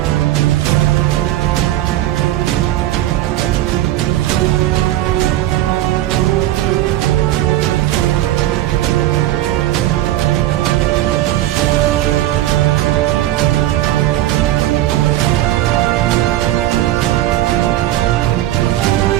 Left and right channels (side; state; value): left; quieter; 14.4 dB